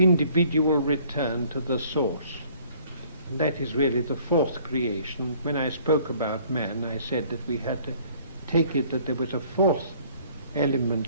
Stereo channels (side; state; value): both; inverted; correlation -0.57